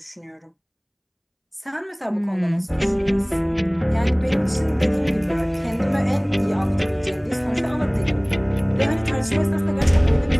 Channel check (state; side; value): identical; both; correlation 1.00